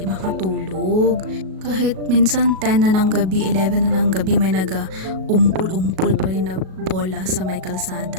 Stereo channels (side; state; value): left; late; 37 ms